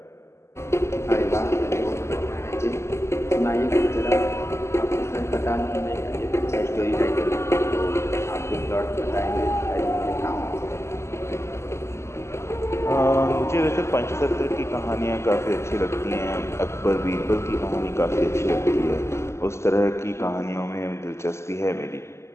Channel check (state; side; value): late; right; 0.13 ms